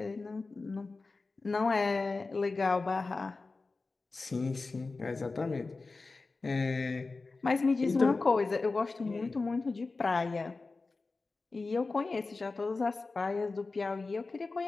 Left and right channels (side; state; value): right; quieter; 3.8 dB